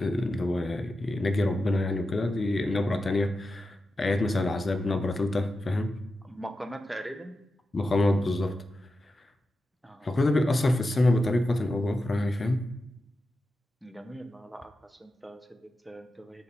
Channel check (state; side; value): normal; both; correlation 0.91